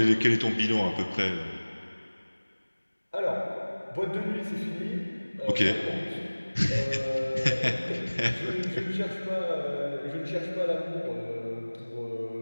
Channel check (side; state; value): both; inverted; correlation -1.00